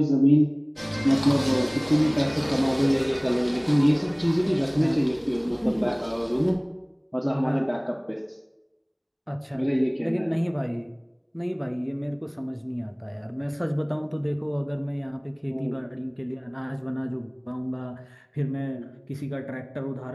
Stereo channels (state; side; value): identical; both; correlation 1.00